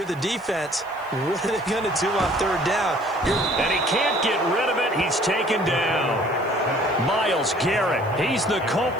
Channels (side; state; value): left; noise; hiss, 28 dB below the sound